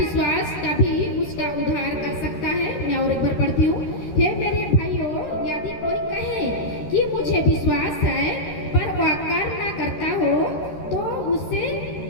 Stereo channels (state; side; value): late; right; 13 ms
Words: कभी उसका उद्धार कर सकता है? मैं और एक बार पढ़ती हूँ। हे मेरे भाइयों, यदि कोई कहे कि मुझे विश्वास है पर वह कर्म ना करता हो तो उससे